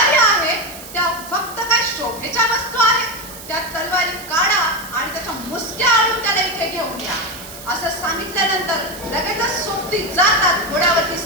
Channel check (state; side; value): noise; right; hiss, 15 dB below the sound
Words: आहे त्या फक्त काय शोभेच्या वस्तू आहेत? त्या तलवारी काढा आणि त्याच्या मुसक्या आणून त्याला इथे घेऊन या. असं सांगितल्यानंतर लगेचच सोबती जातात, घोड्यावरती